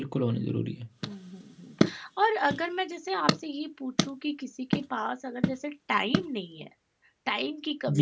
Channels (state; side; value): identical; both; correlation 1.00